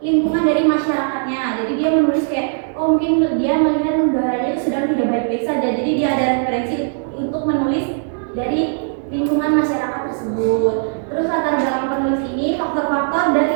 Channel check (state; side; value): silent; left; digital silence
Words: lingkungan dari masyarakatnya. Jadi dia menulis kayak mungkin dia melihat negaranya itu sedang tidak baik-baik saja. Jadi dia ada referensi untuk menulis dari lingkungan masyarakat tersebut. Terus latar belakang penulis ini faktor-faktor